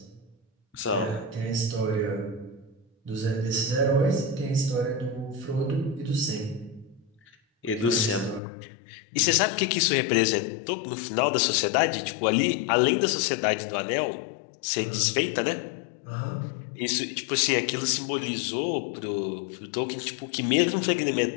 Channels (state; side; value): drops out; right; at 8.4 s